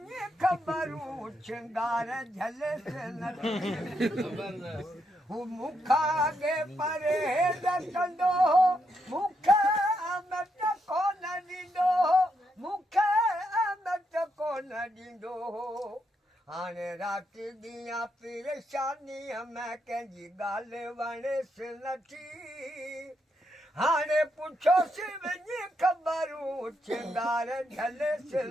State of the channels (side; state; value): both; normal; correlation 0.80